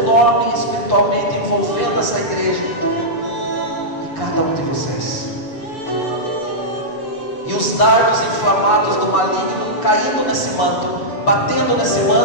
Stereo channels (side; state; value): right; late; 6.9 ms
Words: espiritualmente envolvendo essa igreja e cada um de vocês. E os dardos inflamados do maligno caindo nesse manto, batendo nesse